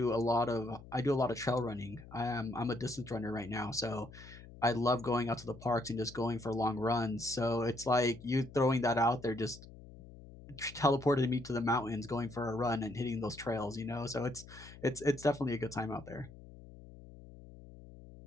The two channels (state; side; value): noise; left; hum, 18 dB below the sound